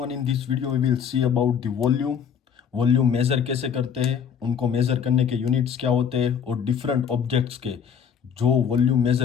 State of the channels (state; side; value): quieter; right; 7.6 dB